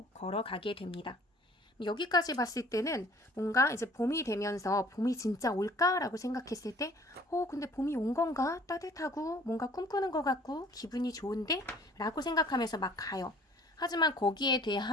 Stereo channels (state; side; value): normal; both; correlation 0.53